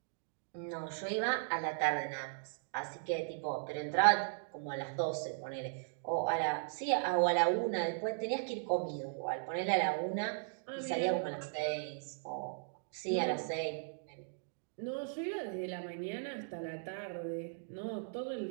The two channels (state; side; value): silent; left; digital silence